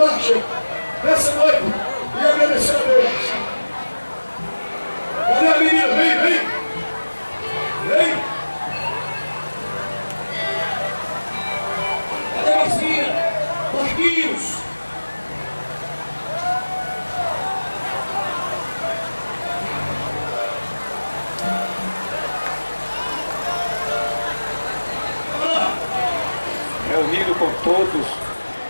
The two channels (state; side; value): inverted; both; correlation -1.00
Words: nessa noite e agradecer a Deus. Cadê a menina? Vem, vem! Vem! Cadê a vizinha? Marquinhos! Reunido com todos